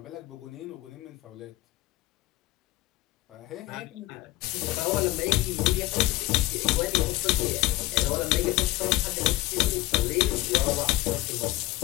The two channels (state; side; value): quieter; right; 18.8 dB